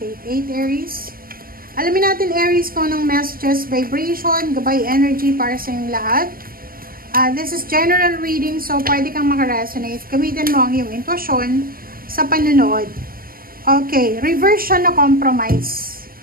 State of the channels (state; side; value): late; left; 0.42 ms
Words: Aries. Alamin natin Aries kung anong messages, vibration, gabay energy para sa inyong lahat. This is general reading, so pwede kang makaresonate. Gamitin mo ang iyong intuition sa panunood. Okay, reverse siya na compromise.